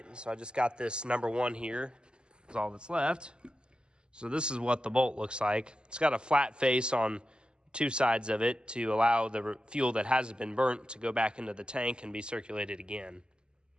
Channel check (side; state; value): left; late; 0.049 ms